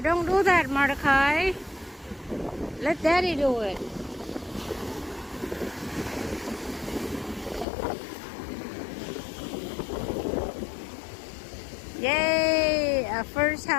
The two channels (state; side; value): drops out; right; at 7.7 s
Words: Don't do that, Mordecai. Let Daddy do it. Yay! A first